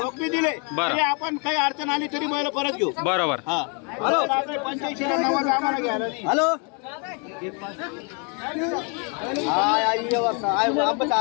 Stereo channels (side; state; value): right; quieter; 34.9 dB